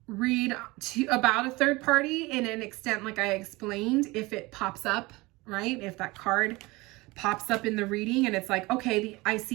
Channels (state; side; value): quieter; left; 22.5 dB